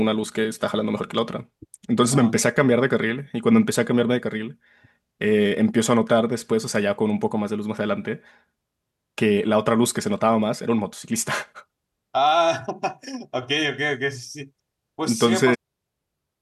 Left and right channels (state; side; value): identical; both; correlation 1.00